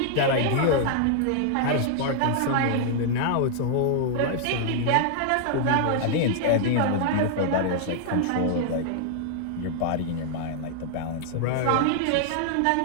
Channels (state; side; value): different; both; correlation -0.01